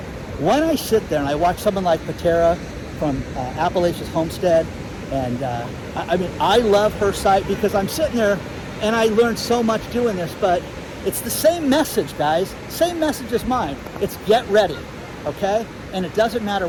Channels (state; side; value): identical; both; correlation 1.00